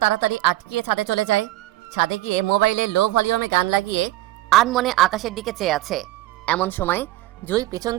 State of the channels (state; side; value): quieter; left; 16.3 dB